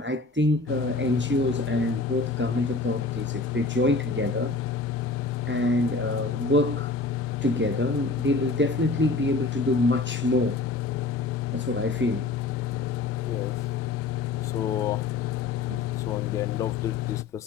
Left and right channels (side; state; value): right; quieter; 3.8 dB